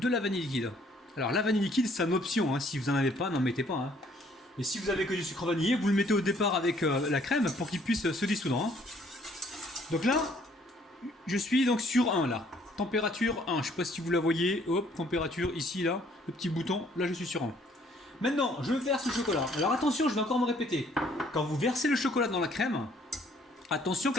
la vanille liquide. Alors la vanille liquide c'est une option, hein. Si vous n'en avez pas, n'en mettez pas. Hein. Et si vous avez que du sucre vanillé, vous le mettez au départ avec la crème pour qu'il puisse se dissoudre. Hein. Donc là, je suis donc sur 1 là. Température 1, je ne sais pas si vous la voyez. Hop, température ici là, le petit bouton, là je suis sur 1. Maintenant, je verse le chocolat. Alors attention, je vais encore me répéter. Quand vous versez le chocolat dans la crème, attention que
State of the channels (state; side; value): normal; both; correlation 0.62